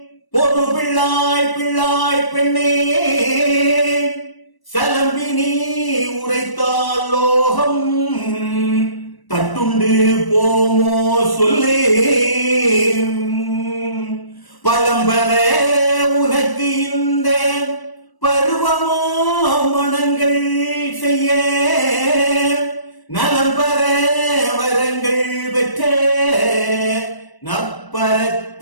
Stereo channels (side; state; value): right; late; 1.0 ms